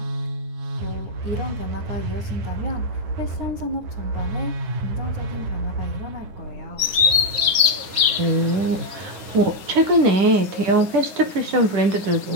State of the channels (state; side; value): late; left; 9.5 ms